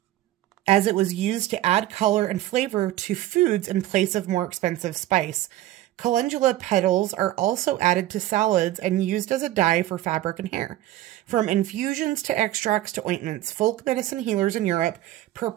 As it was used to add color and flavor to foods in place of more expensive spice. Calendula petals are also added to salads and used as a dye for fabric and hair. From infusions to extracts to ointments, folk medicine healers in Europe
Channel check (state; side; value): quieter; left; 14.6 dB